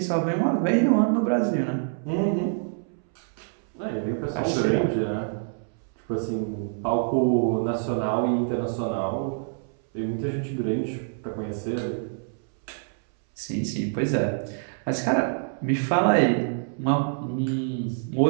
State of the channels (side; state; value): left; silent; 61 dB below the other